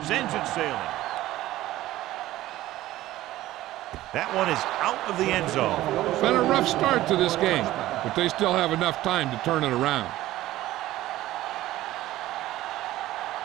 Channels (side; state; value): left; quieter; 15.5 dB